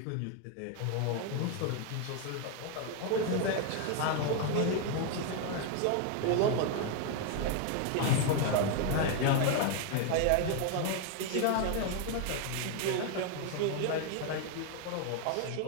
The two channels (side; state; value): both; different; correlation 0.01